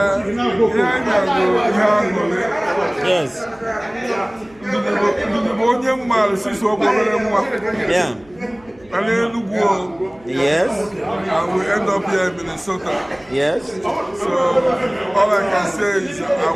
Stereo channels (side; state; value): right; noise; hum, 28 dB below the sound